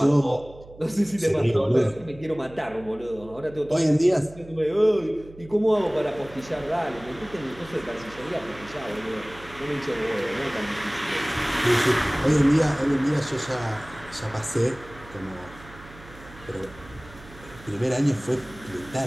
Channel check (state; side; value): noise; right; hum, 19 dB below the sound